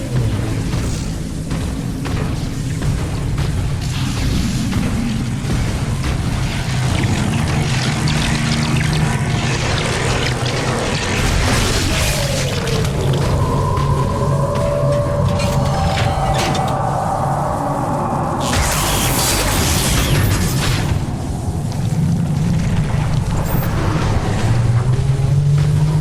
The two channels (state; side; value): identical; both; correlation 1.00